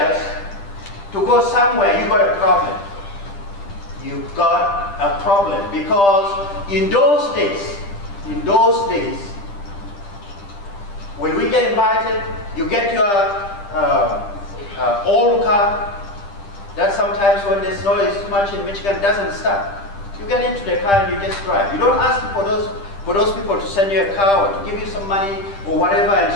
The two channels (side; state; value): right; late; 10 ms